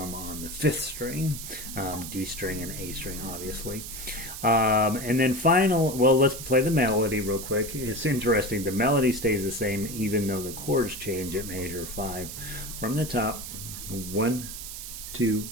on the 5th string, D string and A string, obviously. And then let's play the melody real quick. It's interesting. The melody stays the same even though the chords change at measure 5. From the top, 1, 2,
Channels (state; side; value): noise; right; hiss, 9 dB below the sound